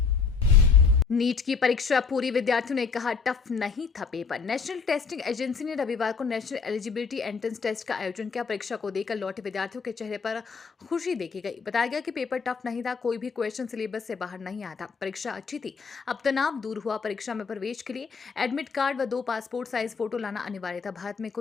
नीट की परीक्षा पूरी, विद्यार्थियों ने कहा टफ नहीं था पेपर। नेशनल टेस्टिंग एजेंसी ने रविवार को नेशनल एलिजिबिलिटी एंट्रेंस टेस्ट का आयोजन किया। परीक्षा को देकर लौटे विद्यार्थियों के चेहरे पर खुशी देखी गई। बताया गया कि पेपर टफ नहीं था, कोई भी क्वेश्चन सिलेबस से बाहर नहीं आया था। परीक्षा अच्छी थी, अब तनाव दूर हुआ। परीक्षा में प्रवेश के लिए एडमिट कार्ड व 2 पासपोर्ट साइज फोटो लाना अनिवार्य था। भारत में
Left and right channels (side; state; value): right; quieter; 5.4 dB